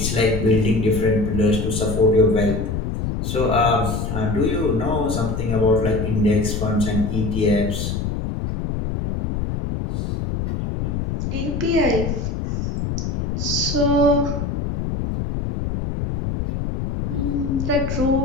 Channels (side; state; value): left; noise; rumble, 2 dB below the sound